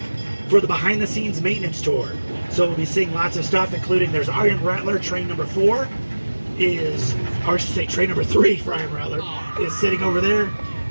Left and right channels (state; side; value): inverted; both; correlation -1.00